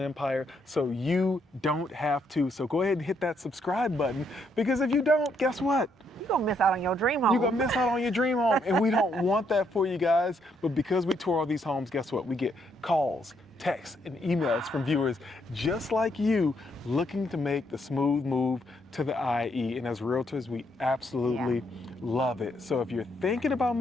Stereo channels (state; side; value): normal; both; correlation 0.74